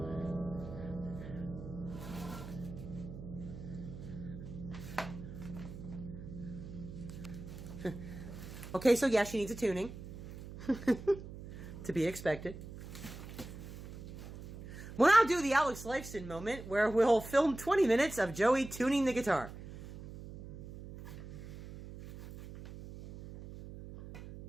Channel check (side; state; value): right; noise; hum, 12 dB below the sound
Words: Okay, so yeah, she needs a tuning. To be expected. We'll now do the Alex Lifeson moment, where we'll film 20 minutes of Joey tuning the guitar.